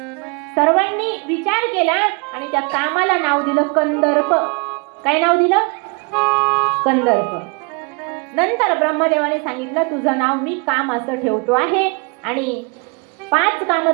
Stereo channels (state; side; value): quieter; left; 32.5 dB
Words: सर्वांनी विचार केला आणि त्या कामाला नाव दिलं कंदर्प. काय नाव दिलं? कंदर्प. नंतर ब्रह्मदेवाने सांगितलं तुझं नाव मी काम असं ठेवतो आहे आणि 5